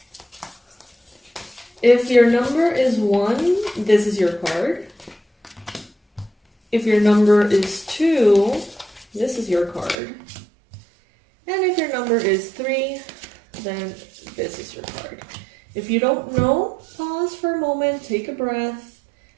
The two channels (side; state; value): left; drops out; at 10.0 s